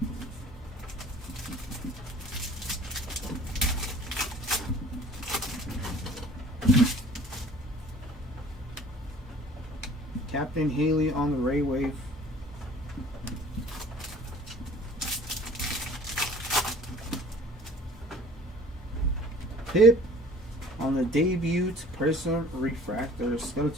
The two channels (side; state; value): both; normal; correlation 0.49